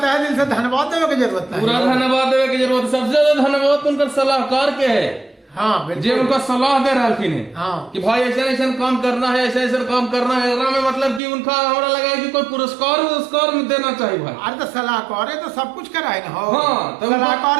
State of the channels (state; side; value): drops out; left; at 11.2 s